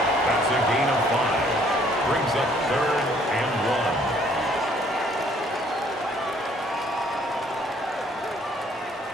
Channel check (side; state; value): both; normal; correlation 0.62